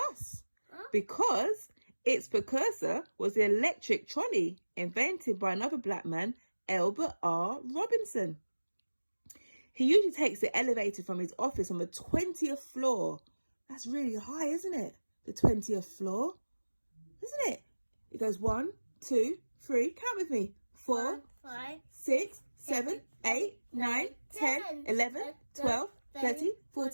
because its precursor was the electric trolley invented by another black man, Albert R. Robinson. He usually takes the elevator from his office on the 20th floor. That's really high, isn't it? The 20th floor. Isn't it? It goes 1, 2, 3. Count with me. 4, 5, 6, 7, 8, 9, 10, 11, 12, 13,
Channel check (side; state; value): both; inverted; correlation -1.00